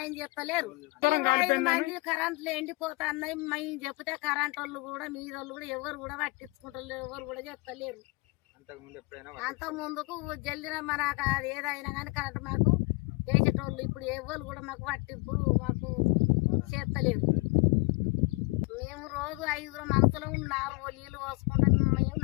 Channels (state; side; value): quieter; right; 25.9 dB